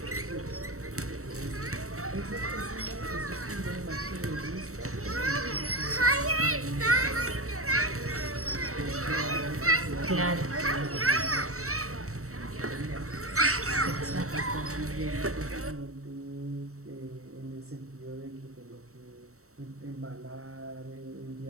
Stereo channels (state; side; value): late; left; 0.64 ms